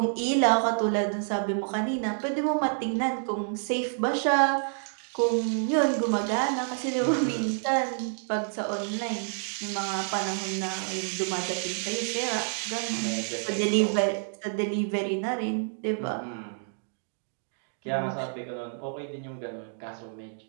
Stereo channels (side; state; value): left; silent; digital silence